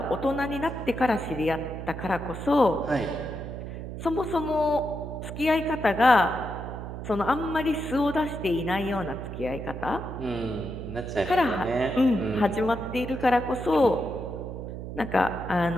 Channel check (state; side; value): noise; right; hum, 8 dB below the sound